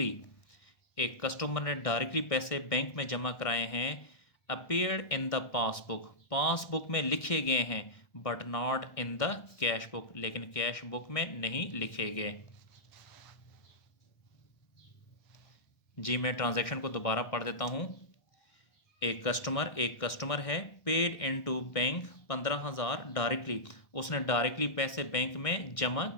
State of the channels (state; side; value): late; right; 1.6 ms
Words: एक कस्टमर ने डायरेक्टली पैसे बैंक में जमा कराए हैं, appeared in the passbook, passbook में लिखे गए हैं, but not in the cash book, लेकिन कैश बुक में नहीं लिखे गए। जी मैं ट्रांजैक्शन को दोबारा पढ़ देता हूँ। एक कस्टमर है, पेड इनटू बैंक 15,000 डायरेक्टली, उसने डायरेक्टली पैसे बैंक में जमा